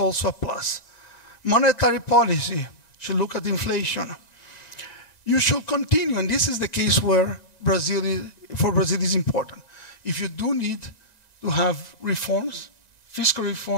a plus. Monetary policy should look at inflation. You should continue, and this is the case where for Brazil is important. If you do need to have reforms, fiscal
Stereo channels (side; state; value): right; late; 1.9 ms